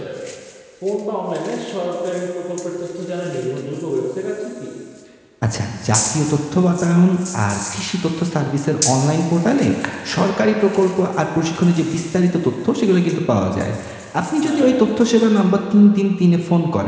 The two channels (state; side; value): identical; both; correlation 1.00